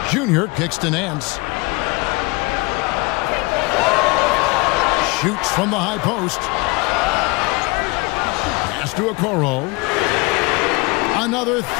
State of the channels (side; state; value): right; quieter; 26.5 dB